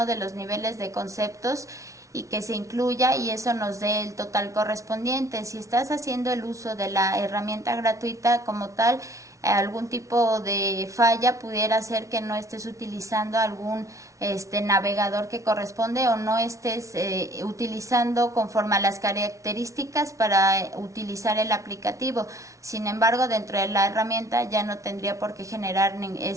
de los niveles de conceptos y que se incluya y eso nos dé el total correspondiente. Si estás haciendo el uso de la herramienta gratuita como tal, algún tipo de falla pudiera ser que no estés utilizando algún navegador que corresponde o no estés utilizando conforme a las características para utilizar el aplicativo. Sin embargo, dentro de la herramienta ya no tendría por qué generar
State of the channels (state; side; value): late; left; 0.15 ms